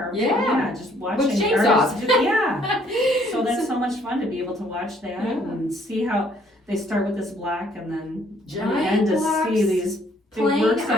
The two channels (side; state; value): both; normal; correlation 0.63